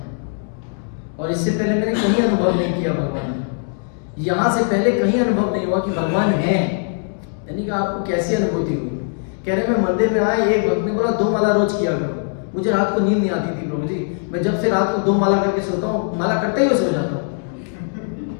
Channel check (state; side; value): silent; right; 60 dB below the other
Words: और इससे पहले मैंने कहीं अनुभव नहीं किया भगवान है। यहाँ से पहले कहीं अनुभव नहीं हुआ कि भगवान है। यानी कि आपको कैसी अनुभूति हुई? कह रहे मैं मंदिर में आया, एक भक्त ने बोला 2 माला रोज किया करो। मुझे रात को नींद नहीं आती थी प्रभु जी, मैं जब से रात को 2 माला करके सोता हूँ, माला करते ही सो जाता हूँ।